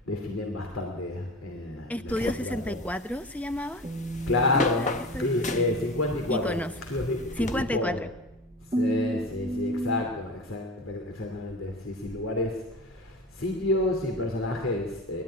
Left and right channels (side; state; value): both; normal; correlation 0.32